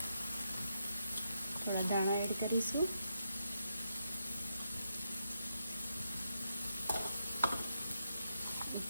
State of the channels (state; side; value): inverted; both; correlation -0.81